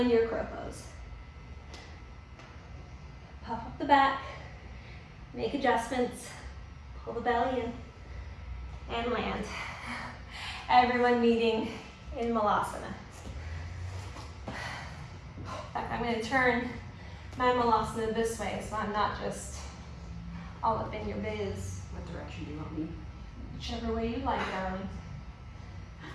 your crow pose. Puff up the back, make adjustments. Pull the belly in and land. Everyone meeting in Malasana. In fact, I'm going to turn my Malasana this way so I'm not just all up in your biz. What direction do you want me? Whichever way you like, darling.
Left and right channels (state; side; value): identical; both; correlation 1.00